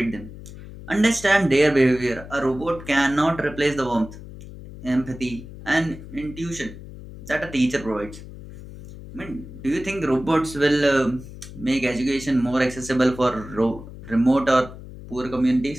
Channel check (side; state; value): left; noise; hum, 14 dB below the sound